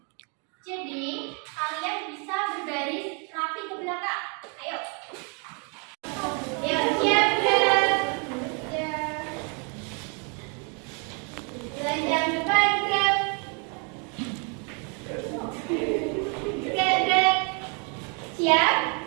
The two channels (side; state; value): left; quieter; 36.3 dB